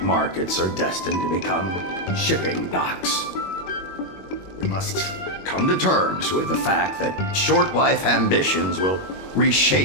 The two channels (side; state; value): right; late; 21 ms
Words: markets are destined to become shipping docks. We must come to terms with the fact that short-life ambitions will